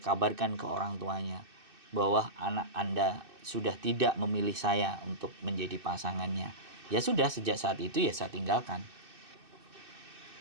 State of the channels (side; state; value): left; late; 2.6 ms